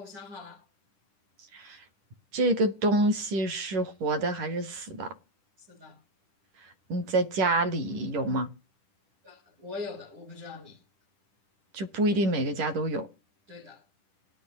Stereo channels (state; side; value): late; left; 10 ms